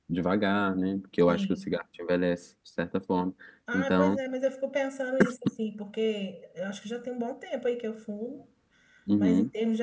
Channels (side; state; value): both; identical; correlation 1.00